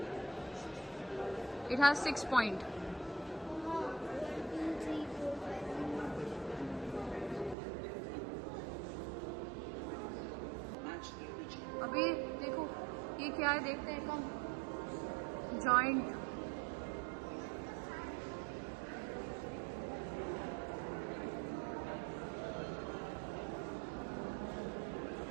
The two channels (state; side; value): drops out; left; at 7.6 s